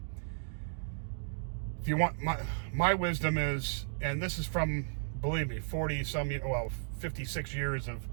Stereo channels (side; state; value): left; silent; digital silence